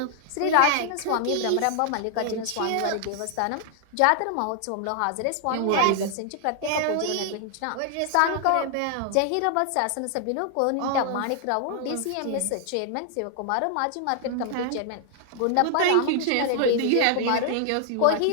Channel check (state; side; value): different; both; correlation 0.00